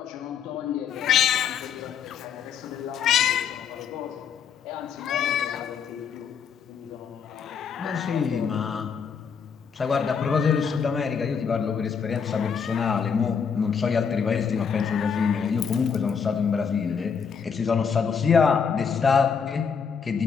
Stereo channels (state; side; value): quieter; right; 6.6 dB